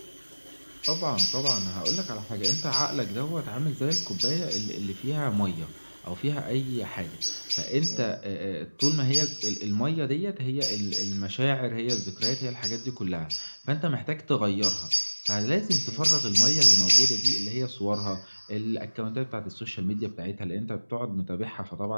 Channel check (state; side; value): inverted; both; correlation -1.00